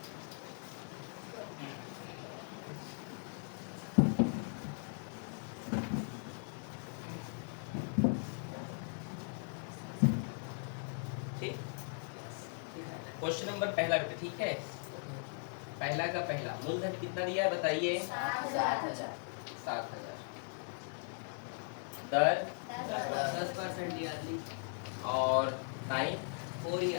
ठीक, क्वेश्चन नंबर पहला बेटा, ठीक है? पहला का पहला मूलधन कितना दिया है बताइए? 7,000। दर 10% ईयरली और टाइम 4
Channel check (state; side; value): silent; right; 52 dB below the other